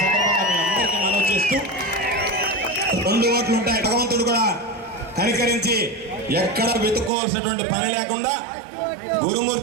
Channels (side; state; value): left; drops out; at 7.1 s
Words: సందర్భంగా మీ అందరికీ మనవి చేస్తూ 2 ఓట్లు ఉంటాయి. భగవంతుడు కూడా కనికరించి ఎక్కడ వెతుక్కోవాల్సినటువంటి పని లేకుండా